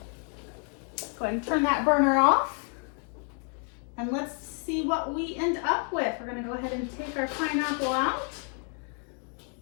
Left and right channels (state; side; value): quieter; right; 38.8 dB